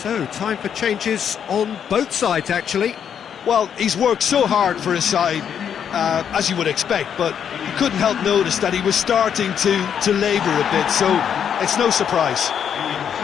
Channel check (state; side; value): quieter; right; 8.3 dB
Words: time for changes on both sides, actually. Well, he's worked so hard for his side, as you would expect, but you couldn't help notice that he was starting to labour a bit, so it's no surprise.